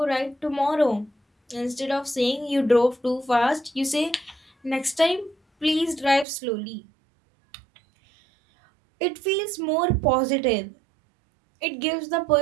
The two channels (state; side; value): drops out; left; at 6.2 s